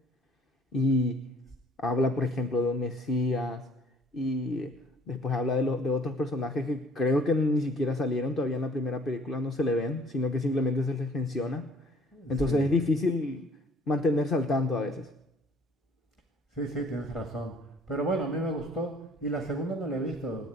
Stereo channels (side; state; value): both; normal; correlation 0.56